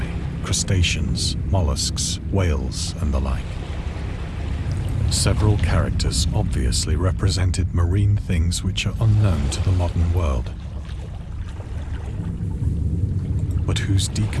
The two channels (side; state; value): both; identical; correlation 1.00